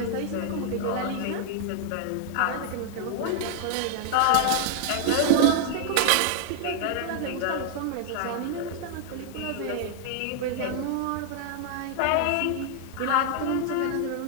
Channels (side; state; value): both; different; correlation 0.00